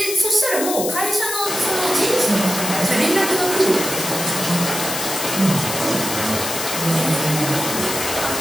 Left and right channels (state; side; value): noise; left; hiss, 4 dB below the sound